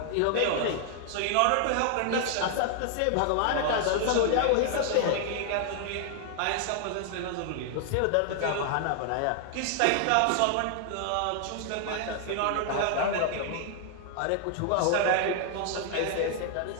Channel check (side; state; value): both; different; correlation 0.00